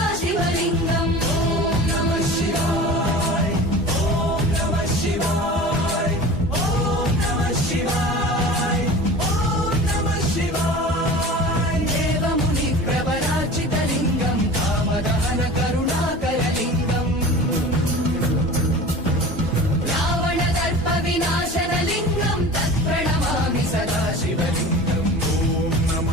शिवलिङ्गम् ॐ नमः शिवाय ॐ नमः शिवाय ॐ नमः शिवाय ॐ नमः शिवाय देवमुनिप्रवरार्चितलिङ्गं कामदहन करुणाकरलिङ्गम् विनाशनलिङ्गं तत्प्रणमामि सदा शिवलिङ्गम् ॐ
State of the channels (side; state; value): both; normal; correlation 0.37